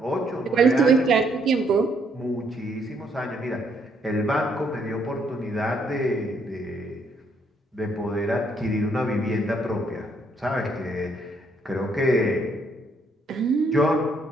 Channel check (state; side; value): normal; both; correlation 0.70